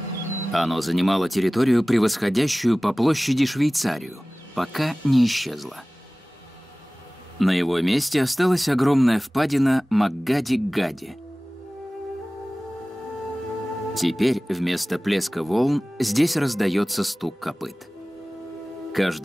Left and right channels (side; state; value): both; normal; correlation 0.98